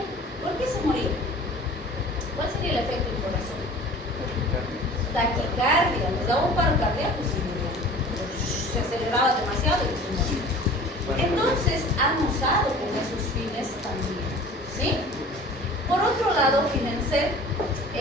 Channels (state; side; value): normal; both; correlation 0.44